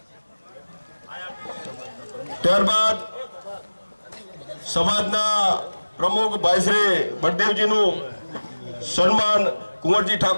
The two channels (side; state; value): both; inverted; correlation -1.00